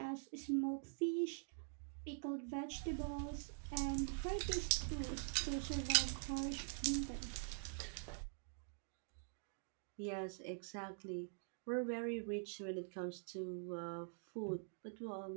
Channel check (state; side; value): silent; left; digital silence